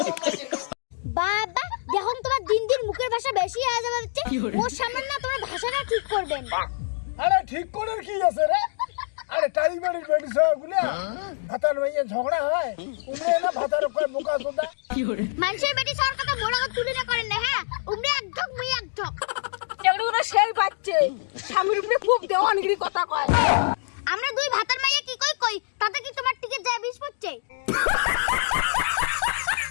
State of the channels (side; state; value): right; silent; digital silence